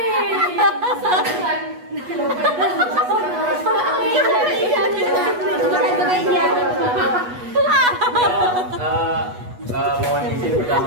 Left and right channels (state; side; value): late; left; 8.2 ms